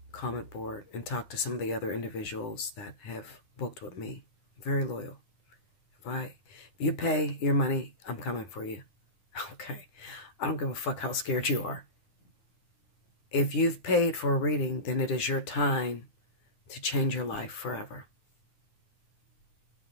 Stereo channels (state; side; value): late; right; 10 ms